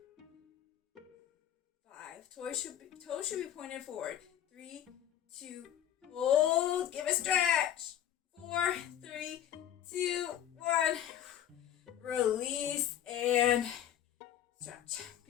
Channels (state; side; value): quieter; right; 10.8 dB